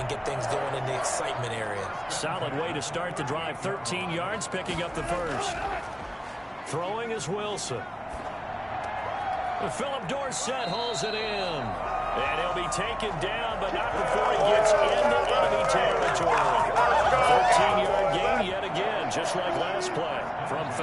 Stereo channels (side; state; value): both; identical; correlation 1.00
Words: get things going in the excitement area. Solid way to start the drive. 13 yards, picking up the first. Throwing is Wilson. Philip Dorsett hauls it in. And he'll be taken down, but not before he gets into enemy territory. 13-yard gain yet again, just like last play. From